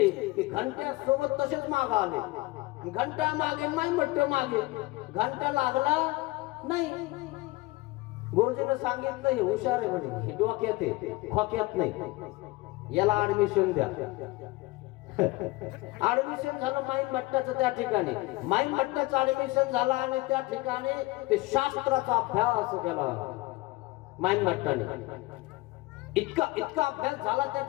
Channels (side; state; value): right; quieter; 21.2 dB